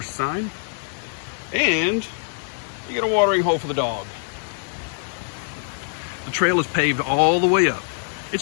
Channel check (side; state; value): right; silent; digital silence